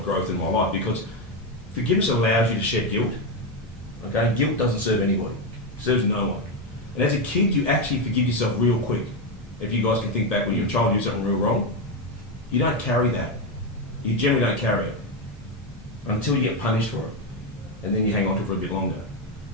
growth in my life, because forgiveness allows you to shed guilt. Okay, guilt doesn't serve anybody, it serves no one. And as a kid, you actually forgive yourself real quick. If you guys can think back when you're a child and you do something real wrong, you don't carry that. You generally don't carry it until you get punished for it, and then you hang on to it for a bit longer,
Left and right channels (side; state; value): both; normal; correlation 0.08